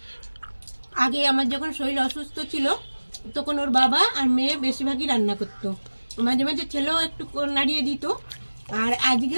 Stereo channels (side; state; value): both; inverted; correlation -1.00